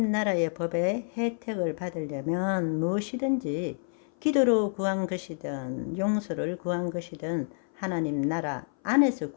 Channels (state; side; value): silent; right; 57 dB below the other